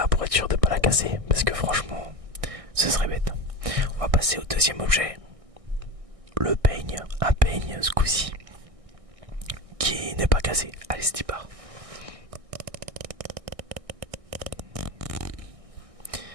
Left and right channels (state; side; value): late; left; 1.6 ms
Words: pour être sûr de ne pas la casser, parce que franchement, ce serait bête. On va passer au deuxième objet. Le peigne, un peigne ce coup-ci, qui n'est pas cassé. Allez, c'est y part.